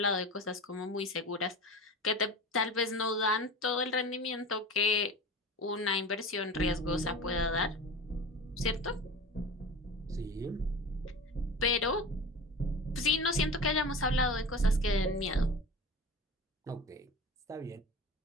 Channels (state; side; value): normal; both; correlation 0.33